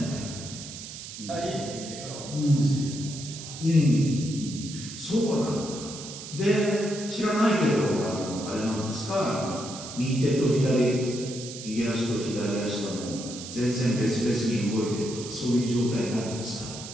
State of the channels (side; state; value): right; noise; hiss, 11 dB below the sound